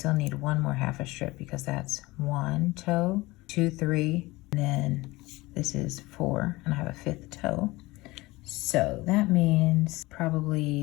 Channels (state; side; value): quieter; right; 20.9 dB